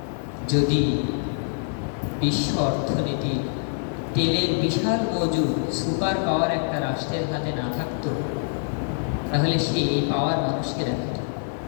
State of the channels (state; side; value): silent; right; 62 dB below the other